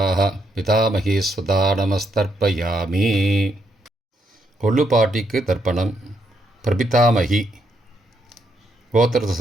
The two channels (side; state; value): both; normal; correlation 0.77